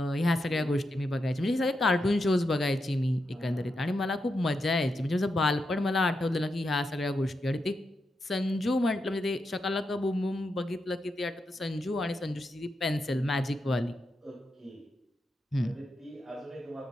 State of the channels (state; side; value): normal; both; correlation 0.86